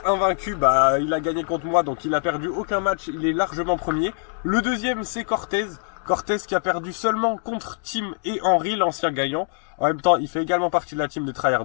invaincu. Bah, il a gagné contre moi, donc il a perdu aucun match. Il est largement premier. Le deuxième, c'est Cortez. Cortez qui a perdu seulement contre Tim et Henry, l'ancien gagnant. En même temps, il fait également partie de la team des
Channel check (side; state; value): right; silent; digital silence